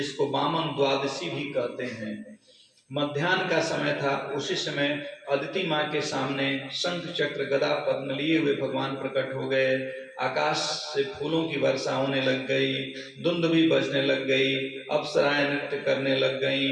वामन द्वादशी भी कहते हैं। मध्याह्न का समय था। उसी समय अदिति माँ के सामने शंख चक्र गदा पद्म लिए हुए भगवान प्रकट हो गए। आकाश से फूलों की वर्षा होने लग गई, धुंध भी बजने लग गई, अप्सराएं नृत्य करने लग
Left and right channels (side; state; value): both; identical; correlation 1.00